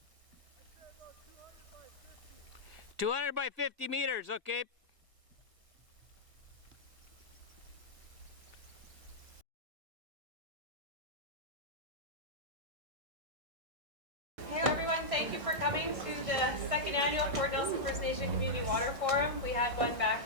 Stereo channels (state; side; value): late; left; 1.6 ms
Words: 200 by 50 meters, okay. Hey everyone, thank you for coming to the second annual Fort Nelson First Nation Community Water Forum. We had one back